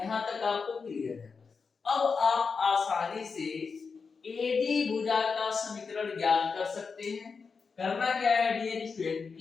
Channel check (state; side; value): quieter; right; 5.2 dB